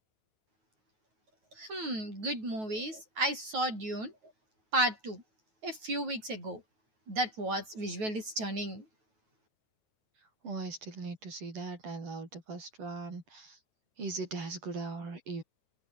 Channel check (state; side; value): late; left; 9.3 ms